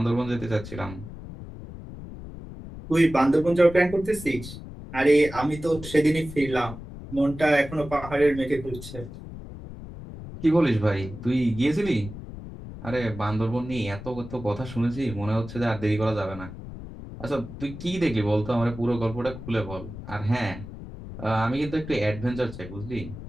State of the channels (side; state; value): left; noise; rumble, 12 dB below the sound